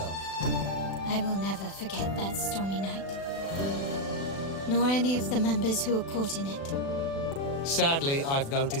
I will never forget that stormy night. Nor any of the members who were caught in it. Sadly, I've no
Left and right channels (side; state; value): right; late; 36 ms